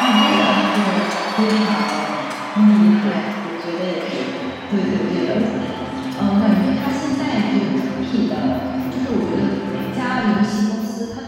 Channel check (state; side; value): identical; both; correlation 1.00